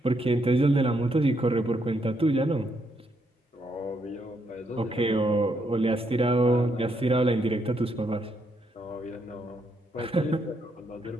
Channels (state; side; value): normal; both; correlation 0.76